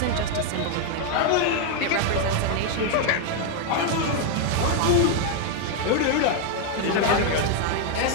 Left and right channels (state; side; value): different; both; correlation 0.01